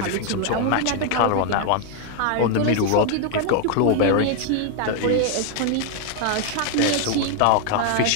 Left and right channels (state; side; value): different; both; correlation 0.00